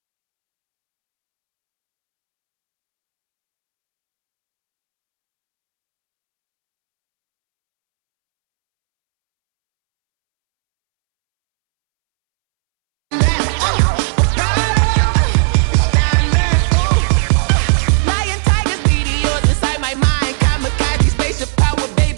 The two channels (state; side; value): silent; left; 71 dB below the other